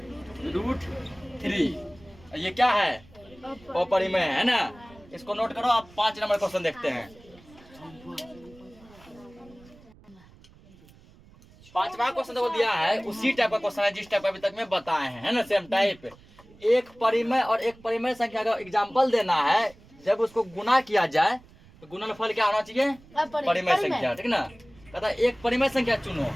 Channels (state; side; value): noise; right; rumble, 25 dB below the sound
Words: ये क्या है, अपरिमेय है ना। इसको नोट करो। आप 5 नंबर क्वेश्चन देखते हैं। पांचवा क्वेश्चन जो दिया है उसी टाइप का क्वेश्चन है जिस टाइप अभी तक में बताए हैं, है ना, सेम टाइप। एक परिमेय और एक परिमेय संख्या का एग्जाम्पल देना है, जब उसको गुना किया जाए तो गुणनफल क्या होना चाहिए? परिमेय संख्या, ठीक ना। कहता है एक परिमेय संख्या चुनो